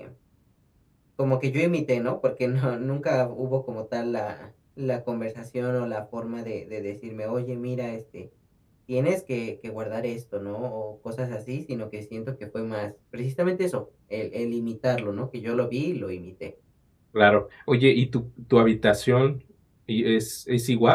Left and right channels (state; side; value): identical; both; correlation 1.00